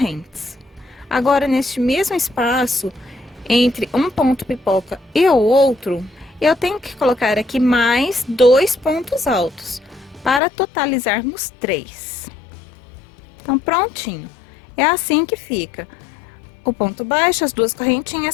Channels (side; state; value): right; drops out; at 10.4 s